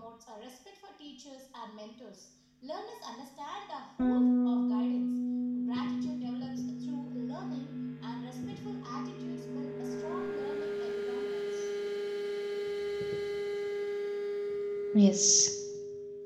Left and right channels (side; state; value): both; identical; correlation 1.00